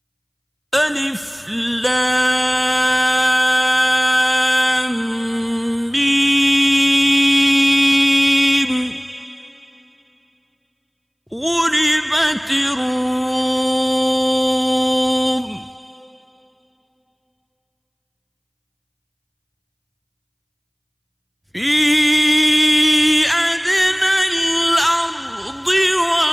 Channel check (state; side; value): identical; both; correlation 1.00